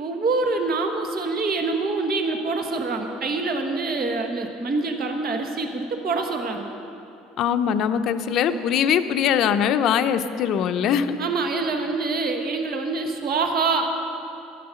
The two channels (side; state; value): both; normal; correlation 0.43